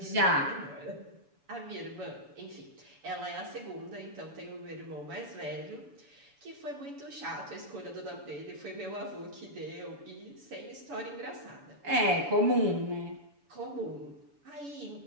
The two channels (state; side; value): late; left; 7.0 ms